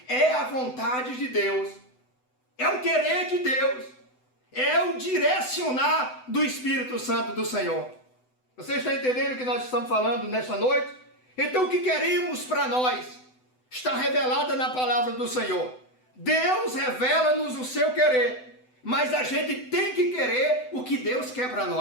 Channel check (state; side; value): late; right; 7.9 ms